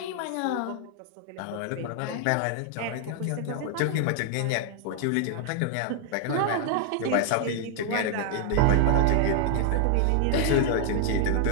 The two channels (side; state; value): both; different; correlation 0.00